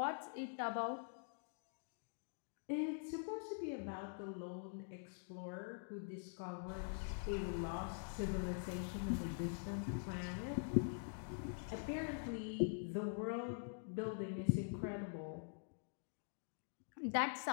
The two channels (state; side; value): silent; right; digital silence